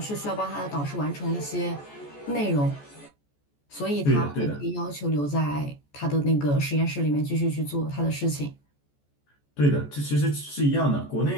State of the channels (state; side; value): late; right; 14 ms